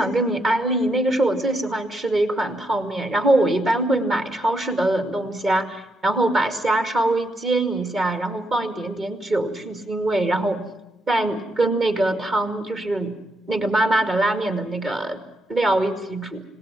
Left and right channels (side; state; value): both; normal; correlation 0.79